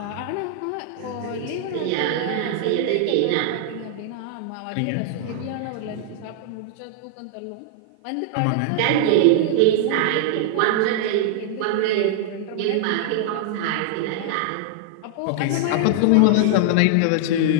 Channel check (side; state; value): both; different; correlation -0.01